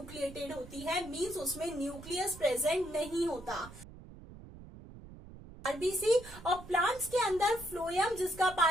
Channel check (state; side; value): noise; right; rumble, 17 dB below the sound